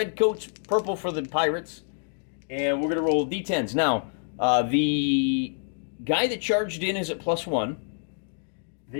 purple for the pirates. And we're going to roll d10s. Now, the guy that charged in is at +1.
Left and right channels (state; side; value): silent; right; digital silence